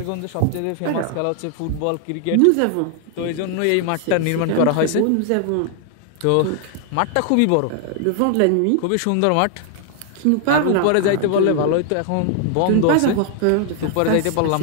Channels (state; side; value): different; both; correlation 0.00